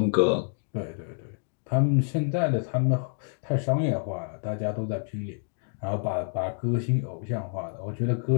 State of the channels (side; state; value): right; silent; digital silence